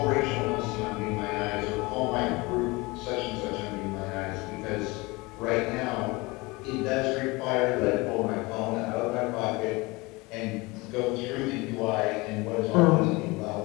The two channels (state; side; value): quieter; right; 24.1 dB